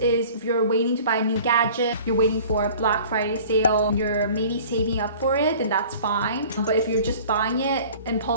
if you're waiting to buy a new gadget, you're waiting for a Black Friday sale, you're maybe saving up for it, then that's fine. But if you're just buying it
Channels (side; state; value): both; inverted; correlation -0.46